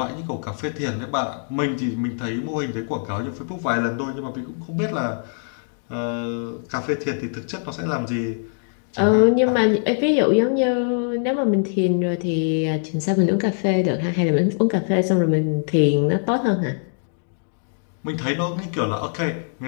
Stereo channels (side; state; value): right; silent; digital silence